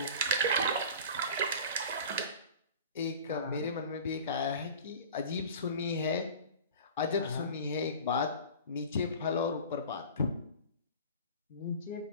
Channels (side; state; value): both; inverted; correlation -0.38